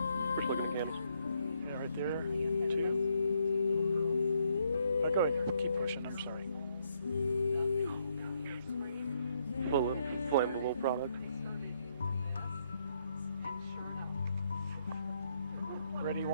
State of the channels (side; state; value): both; inverted; correlation -0.74